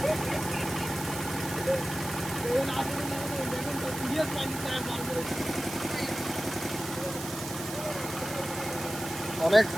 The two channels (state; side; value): noise; right; hiss, 9 dB below the sound